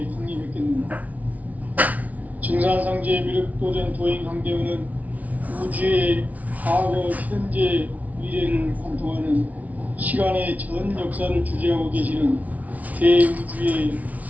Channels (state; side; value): late; left; 0.072 ms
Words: 강림했겠는가? 증산상제 미륵도전 도인 강대훈은 우주의 과거, 현재, 미래를 관통하는 시간의 전 역사를 주재하고 계시는 대우주의